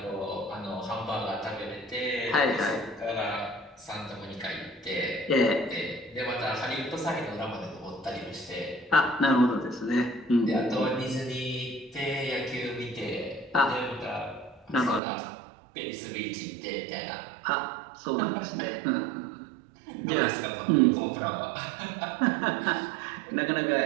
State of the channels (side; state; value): left; drops out; at 15.0 s